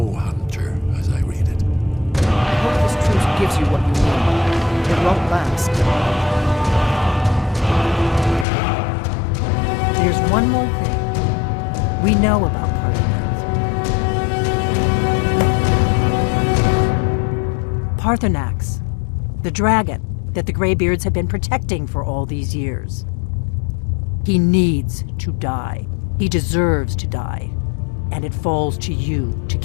hunter, as I read it. I hope this truce gives you what you need. It won't last. There's one more thing. We know about Parthenax, the dragon that the Greybeards have been protecting for all these years. He needs to die. He deserves to die. And it falls to you to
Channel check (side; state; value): right; drops out; at 8.5 s